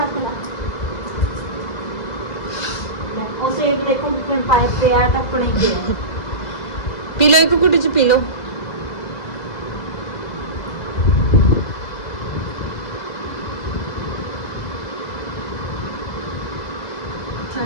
उसे एक देखो कितने पाइप पे आया था अपने के। पी लो एक कुटी पी लो।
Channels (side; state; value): right; late; 2.0 ms